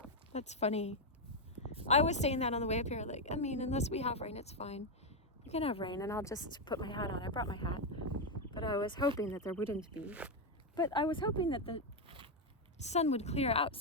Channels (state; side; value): normal; both; correlation 0.04